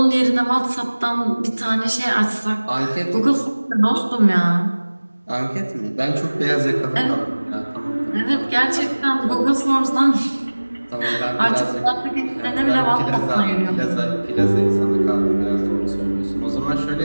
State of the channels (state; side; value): inverted; both; correlation -1.00